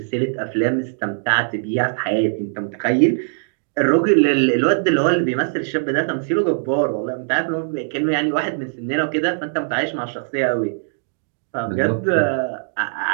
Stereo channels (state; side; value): silent; left; digital silence